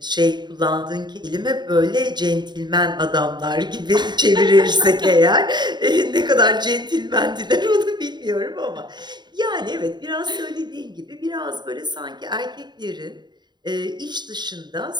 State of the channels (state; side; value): late; left; 0.21 ms